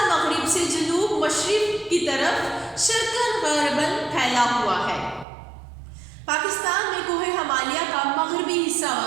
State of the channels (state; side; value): drops out; left; at 5.2 s